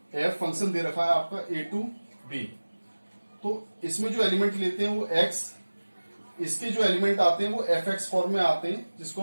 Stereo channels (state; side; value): inverted; both; correlation -1.00